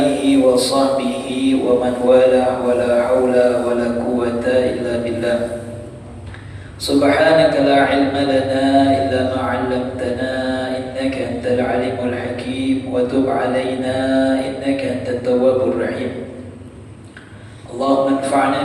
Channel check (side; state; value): both; identical; correlation 1.00